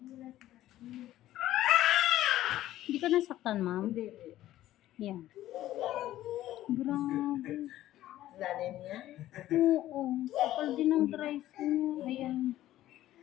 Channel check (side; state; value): right; quieter; 14.1 dB